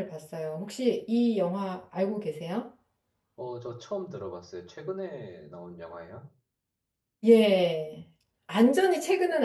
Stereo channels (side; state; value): both; identical; correlation 1.00